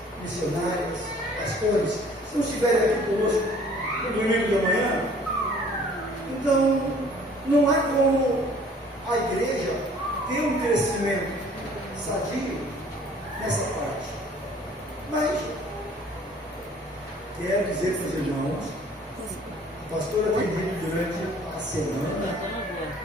missionários, pastores, se não estiverem aqui conosco no domingo da manhã, então não há como a igreja ter um crescimento sadio nessa parte. Mas quero dizer para os irmãos, a pastora tem dito durante a semana,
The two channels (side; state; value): both; normal; correlation 0.54